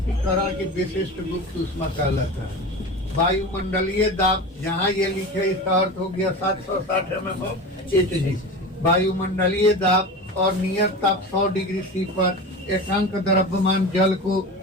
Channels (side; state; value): both; normal; correlation 0.29